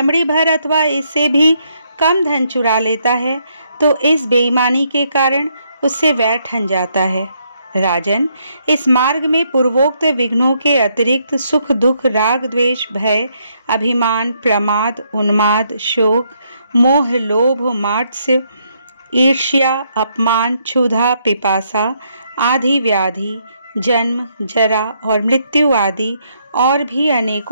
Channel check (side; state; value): both; inverted; correlation -0.74